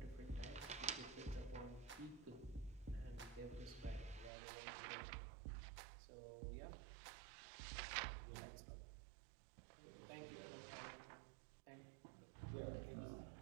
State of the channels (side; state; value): left; drops out; at 4.3 s